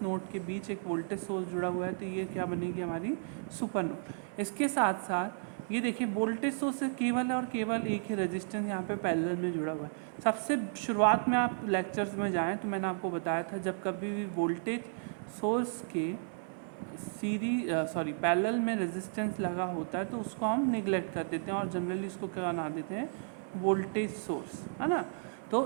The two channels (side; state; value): left; silent; 55 dB below the other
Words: नोड के बीच एक वोल्टेज सोर्स जुड़ा हुआ है, तो ये क्या बनेगी हमारी सुपर नोड। इसके साथ साथ ये देखिए वोल्टेज सोर्स से केवल और केवल एक ही रेजिस्टेंस यहाँ पे पैरेलल में जुड़ा हुआ है। सबसे शुरुआत में आप लेक्चर्स में जाएं तो मैंने आपको बताया था जब कभी भी वोल्टेज सोर्स के पैरेलल में रेजिस्टेंस लगा होता है तो उसको हम निगलेक्ट कर देते हैं और जनरली इसको क्या बना देते हैं, वोल्टेज सोर्स, है ना।